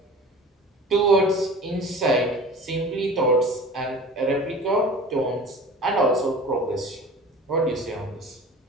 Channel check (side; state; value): both; normal; correlation 0.40